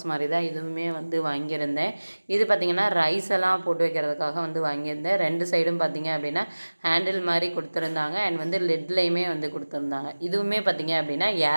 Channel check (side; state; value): both; inverted; correlation -1.00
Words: மாதிரி தான் இதுவுமே வந்து வாங்கியிருந்தேன். இது பார்த்திங்கன்னா ரைஸ் எல்லாம் போட்டு வைக்கிறதுக்காக வந்து வாங்கியிருந்தேன். 2 சைடும் பார்த்திங்க அப்படின்னா ஹேண்டில் மாதிரி கொடுத்துருந்தாங்க. அண்ட் வந்து லெட்லேயுமே வந்து கொடுத்துருந்தாங்க. இதுவுமே பார்த்திங்க அப்படின்னா